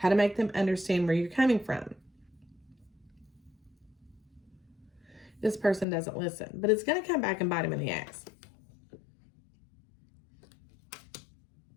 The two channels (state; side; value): drops out; right; at 5.9 s